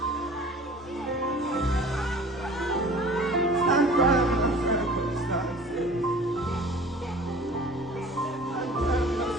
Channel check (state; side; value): normal; both; correlation 0.45